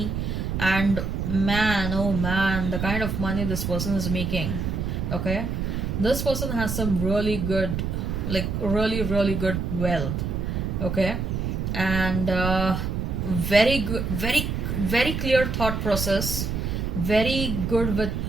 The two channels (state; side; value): noise; right; rumble, 2 dB below the sound